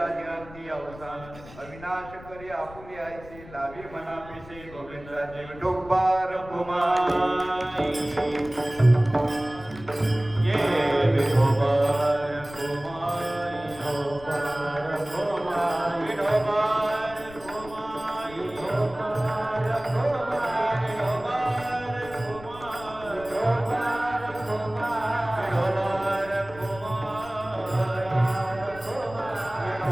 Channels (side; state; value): left; noise; rumble, 18 dB below the sound